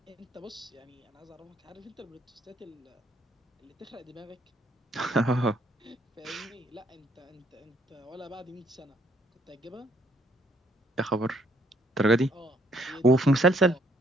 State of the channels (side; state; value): both; normal; correlation 0.67